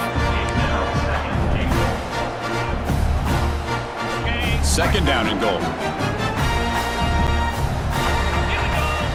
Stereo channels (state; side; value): identical; both; correlation 1.00